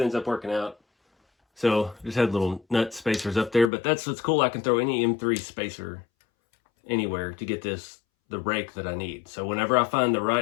ends up working out. So just had little nut spacers up there, but that's what's cool. I can throw any M3 spacer anywhere to get the rake that I need. So whenever I find the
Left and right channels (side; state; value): right; drops out; at 3.7 s